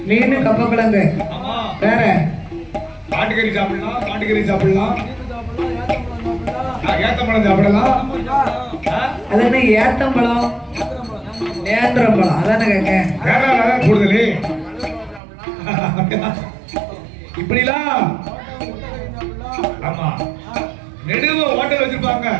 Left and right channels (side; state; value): left; drops out; at 15.2 s